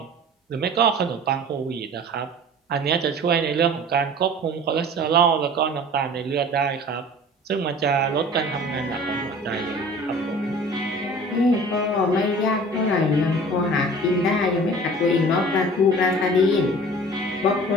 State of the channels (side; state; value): both; normal; correlation 0.43